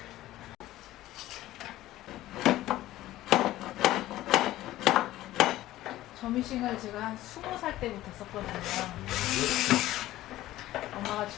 점이싱을 제가 한 20살 때부터 썼거든요. 엄마가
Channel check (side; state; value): right; quieter; 15.4 dB